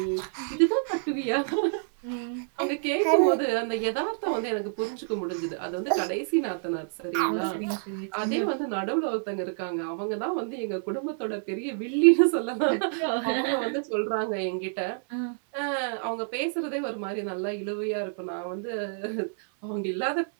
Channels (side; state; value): left; silent; 56 dB below the other